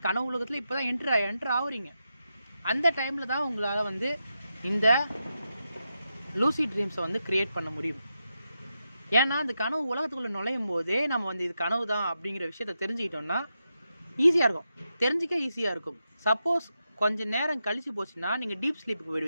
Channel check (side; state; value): both; inverted; correlation -0.87